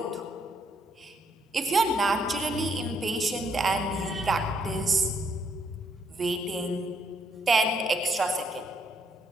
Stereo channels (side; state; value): both; normal; correlation 0.72